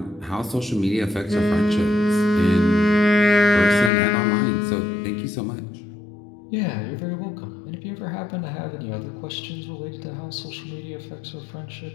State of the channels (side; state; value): right; drops out; at 3.9 s